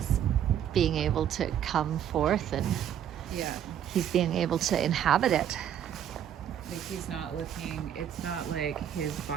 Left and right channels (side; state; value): left; quieter; 9.8 dB